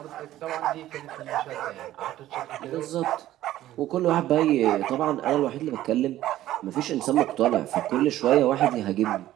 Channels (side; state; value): left; quieter; 14.0 dB